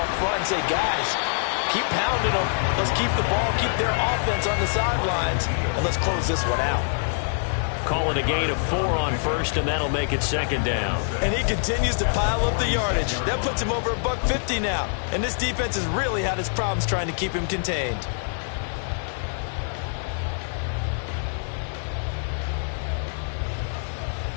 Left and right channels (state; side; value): silent; right; digital silence